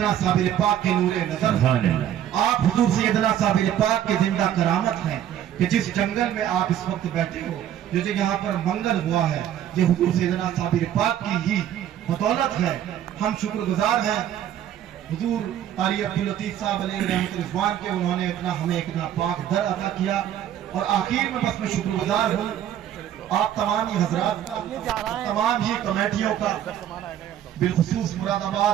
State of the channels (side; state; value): left; quieter; 10.7 dB